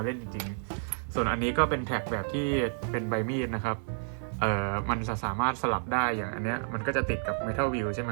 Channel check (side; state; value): left; silent; 58 dB below the other